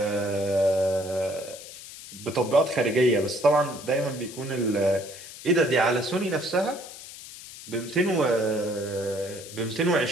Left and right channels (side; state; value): left; noise; hiss, 14 dB below the sound